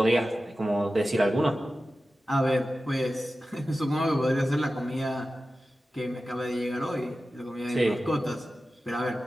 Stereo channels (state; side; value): normal; both; correlation 0.94